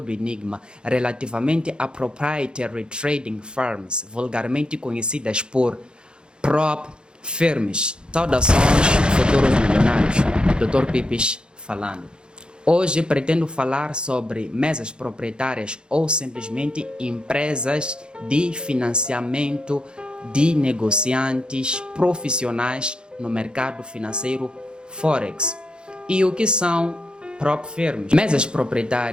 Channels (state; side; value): late; left; 0.050 ms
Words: o enigma relativamente a proprietary trading firms, vulgarmente conhecidas por prop firms. Saudações, futuros milionários. Dr. Pipis falando. Hoje pretendo falar sobre mesas proprietárias ou simplesmente empresas de financiamento de negociantes profissionais no mercado financeiro Forex. E o que são prop firms? Mesas